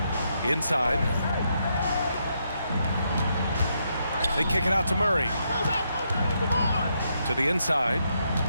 Inside. They kick it out to Murray. To the inside.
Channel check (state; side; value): inverted; both; correlation -0.79